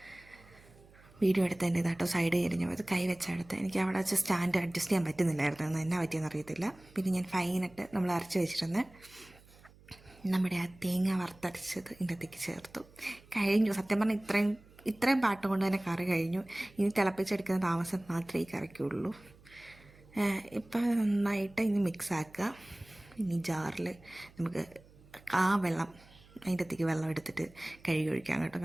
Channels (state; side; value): noise; right; hum, 25 dB below the sound